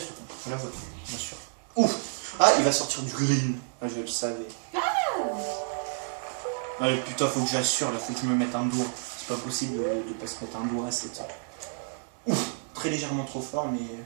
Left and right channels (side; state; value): left; silent; 58 dB below the other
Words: truc. Je la vois, bien sûr. Ouf. Ah, il va sortir du green. Ah, je le savais. Allez, putain, faut que j'assure, là, faut que je me mette un doigt. C'est pas possible de pas se mettre un doigt à cette... Ouf. Très légèrement trop fort, mais